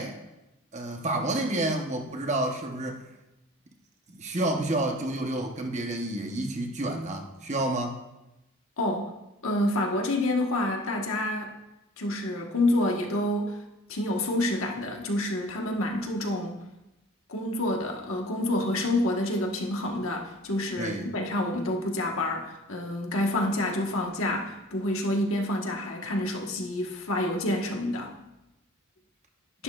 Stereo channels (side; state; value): both; normal; correlation 0.46